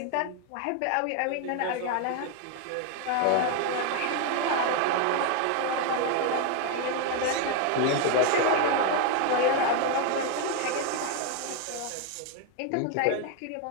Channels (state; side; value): different; both; correlation 0.01